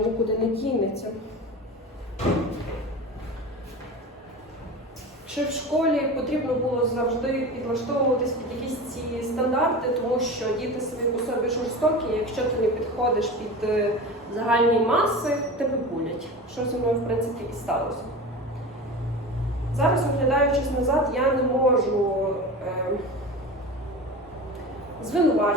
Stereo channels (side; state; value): both; normal; correlation 0.30